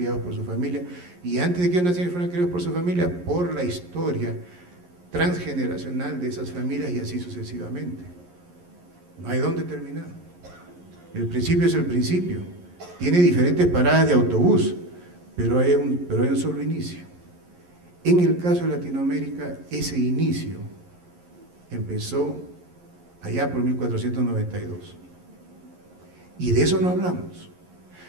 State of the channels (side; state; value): left; late; 11 ms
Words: por su familia. Y antes de que nacieran y fueran criados por su familia, por la historia transgeneracional de esas familias y así sucesivamente. No hay dónde terminar. El principio es el principio. Tiene diferentes paradas de autobús, pero hay un solo inicio. En el caso de Latinoamérica, ese inicio empezó allá por 1492. Y de eso no hablamos,